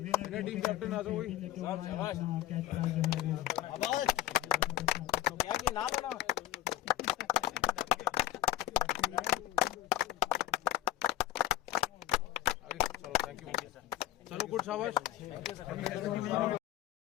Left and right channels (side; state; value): right; quieter; 13.7 dB